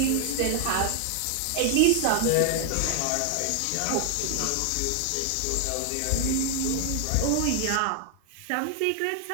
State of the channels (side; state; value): both; different; correlation 0.00